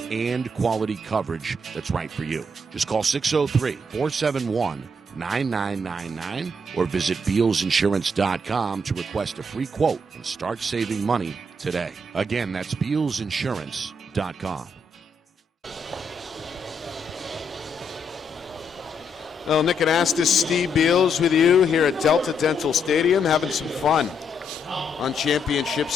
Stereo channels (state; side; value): normal; both; correlation 0.75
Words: and quality coverage that's right for you. Just call 603-471-9999 or visit BealsInsurance.com to request a free quote and start saving money today. Again, that's BealsInsurance.com. Well, Nick Anastas, Steve Beals with you here at Delta Dental Stadium, having some fun on Championship